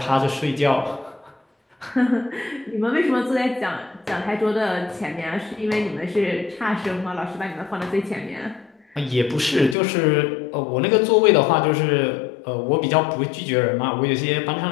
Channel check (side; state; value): right; drops out; at 9.8 s